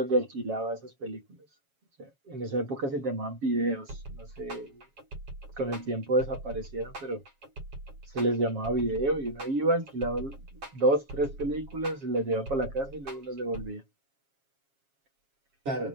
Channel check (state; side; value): late; left; 7.3 ms